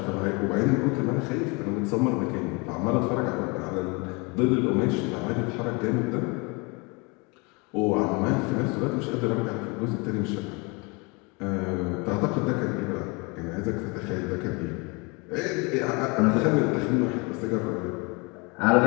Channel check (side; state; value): right; quieter; 28.9 dB